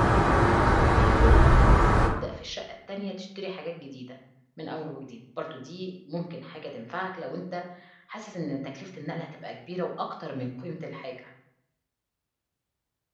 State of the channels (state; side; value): identical; both; correlation 1.00